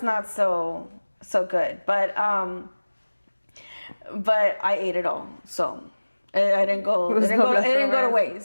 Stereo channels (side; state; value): both; inverted; correlation -1.00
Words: not so good, but I ate it all, so I didn't go. It didn't go to